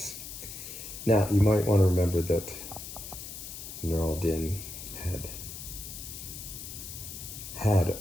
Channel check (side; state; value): left; noise; hiss, 10 dB below the sound